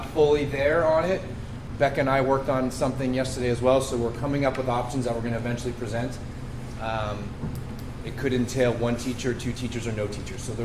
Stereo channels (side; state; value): both; identical; correlation 1.00